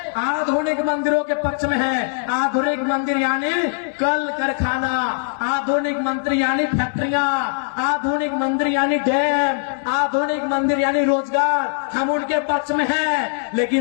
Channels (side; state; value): right; silent; 65 dB below the other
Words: आधुनिक मंदिरों के पक्ष में है। आधुनिक मंदिर यानी कल कारखाना, आधुनिक मंदिर यानी फैक्ट्रियां, आधुनिक मंदिर यानी डैम, आधुनिक मंदिर यानी रोजगार। हम उनके पक्ष में हैं,